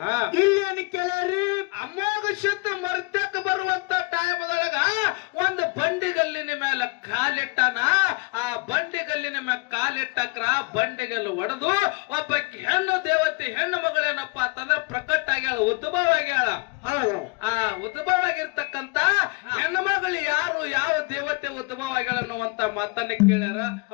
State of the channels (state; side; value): quieter; right; 28.2 dB